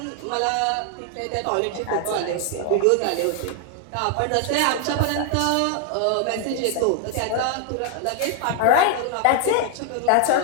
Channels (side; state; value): both; different; correlation 0.00